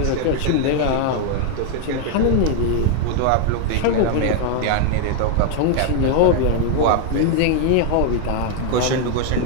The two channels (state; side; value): different; both; correlation 0.00